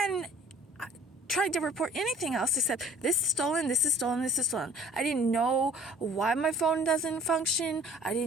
tried to report anything else except this is stolen, this is stolen, this is stolen. I didn't know why my phone doesn't function. I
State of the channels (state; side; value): normal; both; correlation 0.52